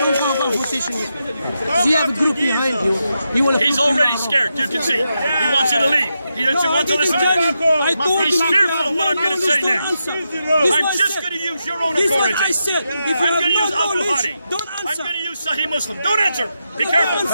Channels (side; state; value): both; inverted; correlation -0.86